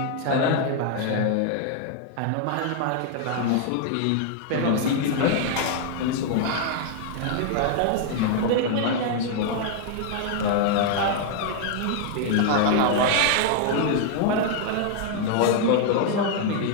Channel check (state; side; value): different; both; correlation 0.00